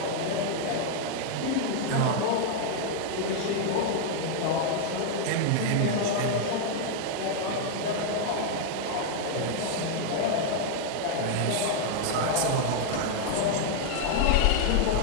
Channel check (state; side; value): different; both; correlation 0.00